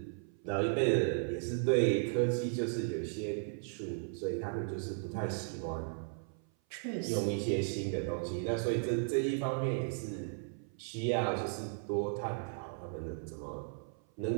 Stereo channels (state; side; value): silent; left; 54 dB below the other